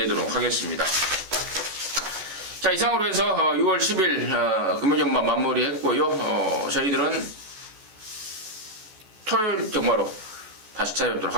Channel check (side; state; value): left; late; 14 ms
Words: 하겠습니다. 자, 이상으로 해서 6월 10일 금요경마 마무리했고요. 저희들은 토요일 경마로 다시 찾아뵙도록